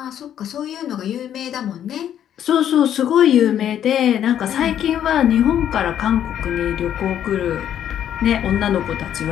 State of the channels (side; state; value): right; quieter; 10.2 dB